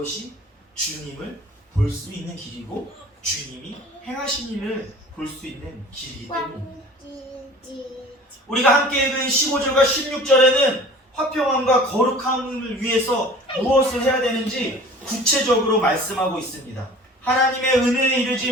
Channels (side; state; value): both; normal; correlation 0.44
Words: 주님을 볼 수 있는 길이고 주님이 행하신 일을 볼 수 있는 길이기 때문입니다. 우리가 함께 읽은 15절과 16절에는 화평함과 거룩함을 위해서 무엇을 해야 되는지 구체적으로 말씀하고 있습니다. 하나님의 은혜에 이르지